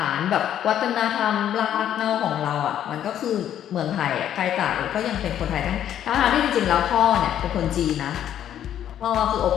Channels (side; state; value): right; quieter; 10.6 dB